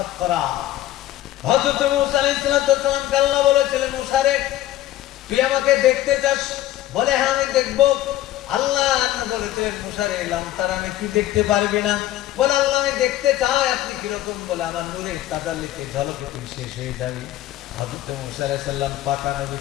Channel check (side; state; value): right; quieter; 14.2 dB